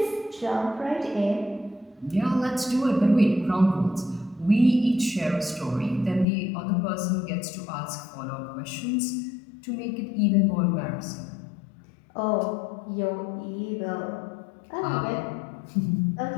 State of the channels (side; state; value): right; drops out; at 6.2 s